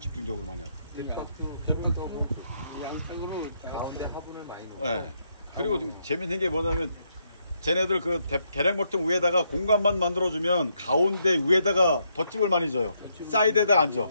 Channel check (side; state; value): both; inverted; correlation -0.77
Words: 많이 하고. 양쪽으로 가운데 화분을 많이 넣어요. 네. 그리고 재밌는 게 뭐냐면, 쟤네들 그 계량벌통 위에다가 공간만 만들어주면 가운데 위에다가 덧집을 많이 줘요. 사이드에다 안 줘.